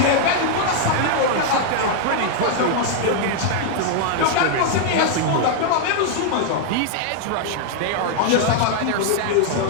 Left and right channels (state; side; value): different; both; correlation 0.00